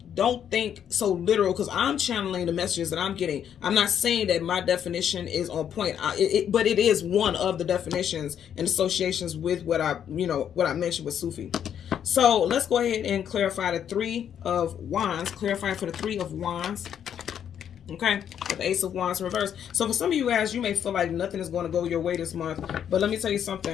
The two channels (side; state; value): right; quieter; 9.0 dB